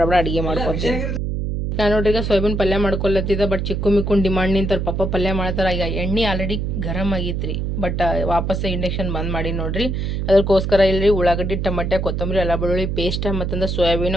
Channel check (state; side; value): noise; right; hum, 1 dB below the sound